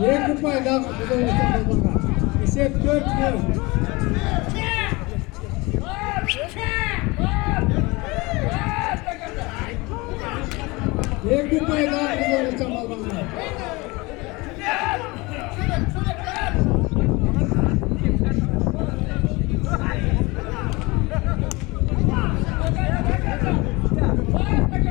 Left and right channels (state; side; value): quieter; right; 24.1 dB